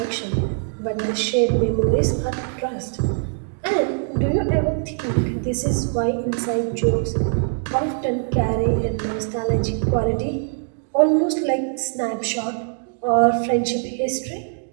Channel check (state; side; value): silent; left; digital silence